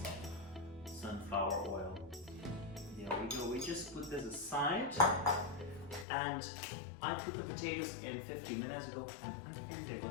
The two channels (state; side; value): drops out; right; at 6.1 s